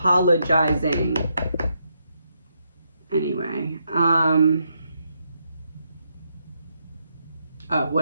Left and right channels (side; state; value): both; inverted; correlation -0.79